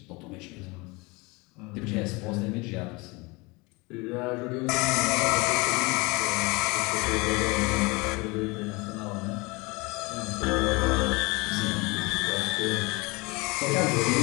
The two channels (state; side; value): quieter; right; 25.8 dB